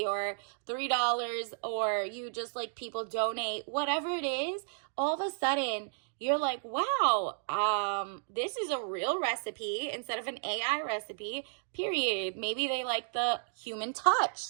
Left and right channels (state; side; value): silent; left; digital silence